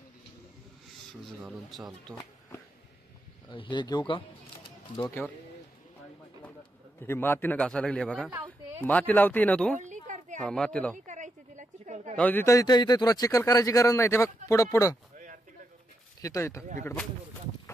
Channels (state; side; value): normal; both; correlation 0.83